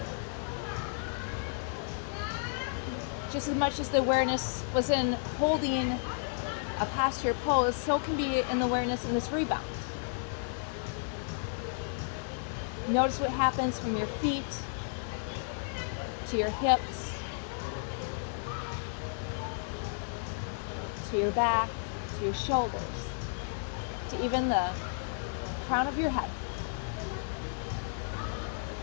Just as much as the awareness was in holding a posture pose, so can be in the awareness in this rebound. Notice what happens from your feet to your hips, to your back, to your shoulders, to even the crown of your head.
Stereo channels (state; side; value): silent; right; 56 dB below the other